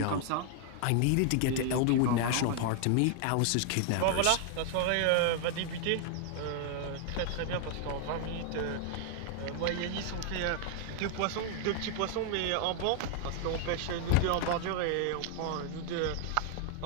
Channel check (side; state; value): both; different; correlation 0.00